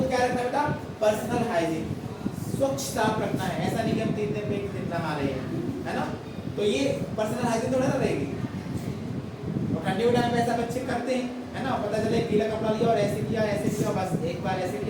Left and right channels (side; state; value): both; identical; correlation 1.00